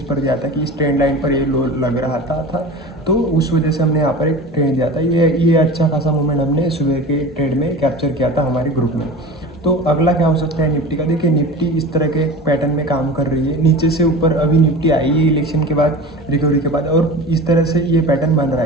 पर दिया था कि इस ट्रेंड लाइन पर ये लो लग रहा था, तो उस वजह से हमने यहाँ पर एक ट्रेड दिया था। ये अच्छा खासा मूवमेंट हमने सुबह के ट्रेड में कैप्चर किया था हमारे ग्रुप में। तो अगला क्या हो सकता है निफ्टी का? देखिए निफ्टी इस तरह के पैटर्न में काम कर रही है, नीचे से ऊपर अभी निफ्टी आई है इलेक्शन के बाद, रिकवरी के बाद, और इस तरह से ये पैटर्न बन रहा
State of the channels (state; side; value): normal; both; correlation 0.33